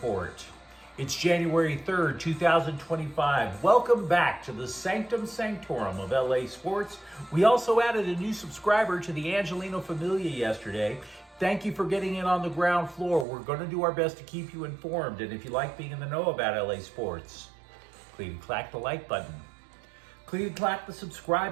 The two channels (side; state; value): left; drops out; at 13.2 s